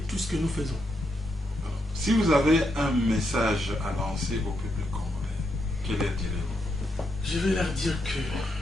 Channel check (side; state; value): both; normal; correlation 0.81